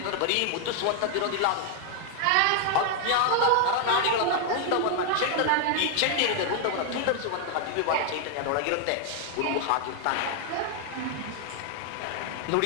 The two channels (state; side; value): different; both; correlation 0.00